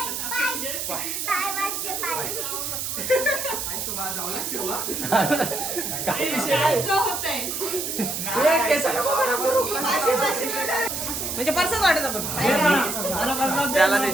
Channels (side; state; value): right; noise; hiss, 3 dB below the sound